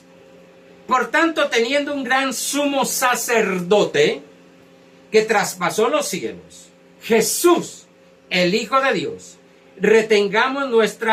Por tanto, teniendo un gran sumo sacerdote que traspasó los cielos, Jesús, el Hijo de Dios, retengamos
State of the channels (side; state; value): both; identical; correlation 1.00